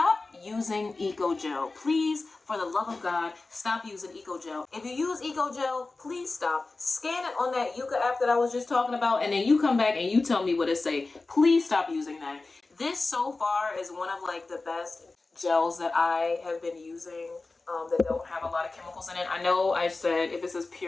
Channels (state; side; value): quieter; right; 3.5 dB